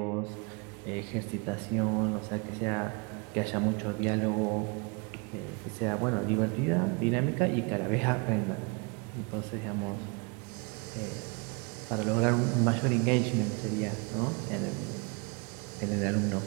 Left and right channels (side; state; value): left; quieter; 31.8 dB